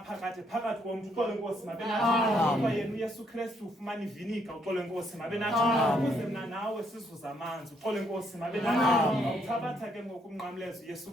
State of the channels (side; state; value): both; normal; correlation 0.72